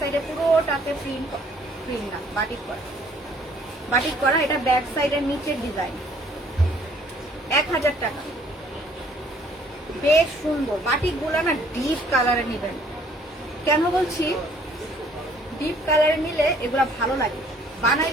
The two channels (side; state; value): both; normal; correlation 0.60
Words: পুরোটাতে প্রিন্ট, প্রিন্ট না বাটিক করা, বাটিক করা। এটা ব্যাক সাইডের নিচের ডিজাইন। 1000 টাকা, বেশ সুন্দর। বাটিক গুলা না ডিপ কালারে নিবেন। কেন বলছি ডিপ কালারে নিলে এগুলা ভালো লাগে,